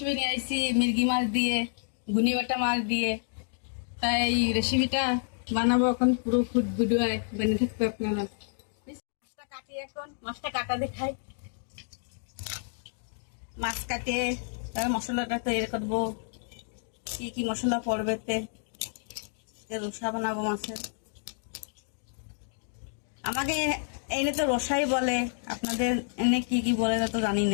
নিয়ে আসছি মির্গি মাছ দিয়ে, গুনি বাটা মাছ দিয়ে। তাই এই রেসিপিটা বানাবো, এখন পুরো ফুড ভিডিও বেনে থাকবে আপনারা। মাছটা কাটি, এখন মাছটা কাটা দেখাই। মাছ কাটে তার মশলাটা তৈরি করবো। কি কি মশলা পড়বে রসা বানাবো মাছের। আমাকে এনে তো রসাই বলে, আপনাদের এনে কি কি বলে তা তো জানি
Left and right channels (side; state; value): right; silent; digital silence